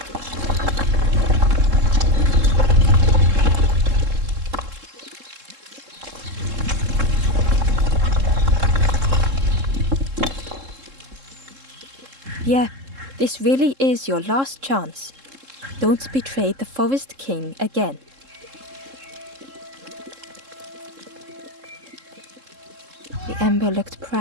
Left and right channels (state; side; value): late; left; 3.7 ms